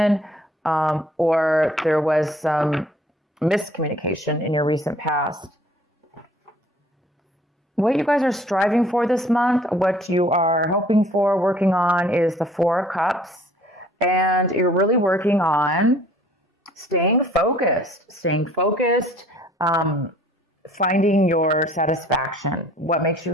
or there was some miscommunication in your recent past. What you guys are striving for this month, what you are hoping for, working on, is the Four of Cups. And you're really working on staying focused, finding your satisfaction, what makes you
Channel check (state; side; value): normal; both; correlation 0.55